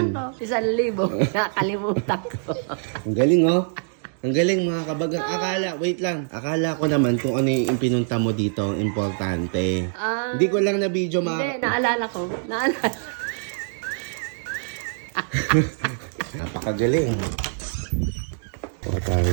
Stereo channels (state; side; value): silent; left; 63 dB below the other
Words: natin. ko. 1,000. Nakalimutan ko. Ang galing oh. Ang galing mga kabagang. Wait lang. Akala ko naman kung ano yung pinunta mo dito ang importante. Hindi ko lang na video Hindi, naalala ko. Napakagaling. O